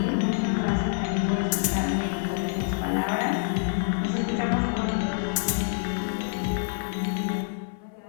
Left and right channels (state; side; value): silent; right; 60 dB below the other